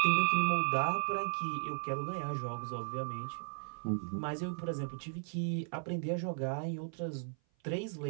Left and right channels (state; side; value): silent; left; 54 dB below the other